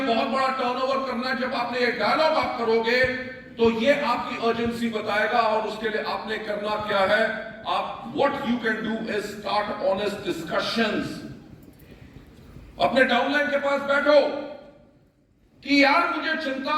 बहुत बड़ा टर्नओवर करना है, जब आपने ये डायलॉग आप करोगे तो ये आपकी अर्जेंसी बताएगा। और उसके लिए आपने करना क्या है? आप what you can do is start honest discussions. अपने डाउनलाइन के पास बैठो कि यार मुझे चिंता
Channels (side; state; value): both; identical; correlation 1.00